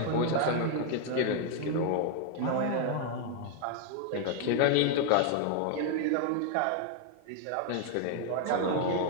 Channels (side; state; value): both; different; correlation 0.00